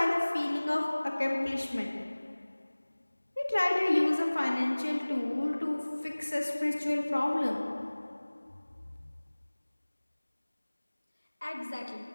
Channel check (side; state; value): both; inverted; correlation -1.00